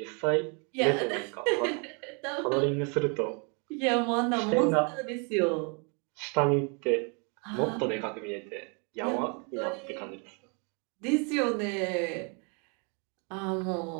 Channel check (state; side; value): quieter; left; 35.5 dB